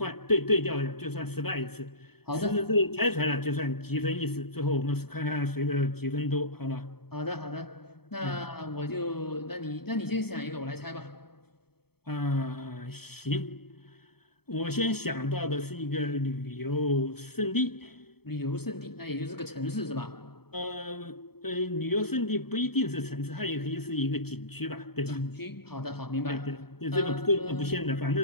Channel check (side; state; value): right; late; 0.96 ms